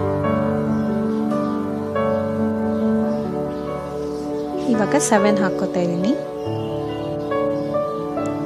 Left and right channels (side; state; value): both; identical; correlation 1.00